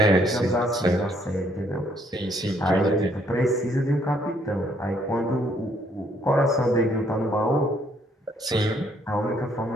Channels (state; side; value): normal; both; correlation 0.68